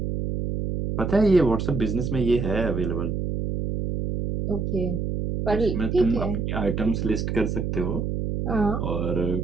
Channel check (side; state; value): right; noise; hum, 2 dB below the sound